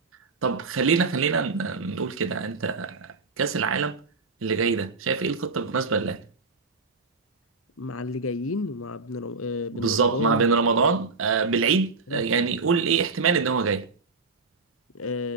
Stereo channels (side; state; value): left; quieter; 4.2 dB